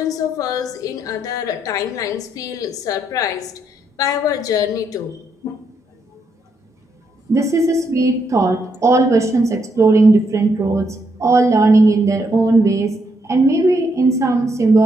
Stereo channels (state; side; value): normal; both; correlation 0.77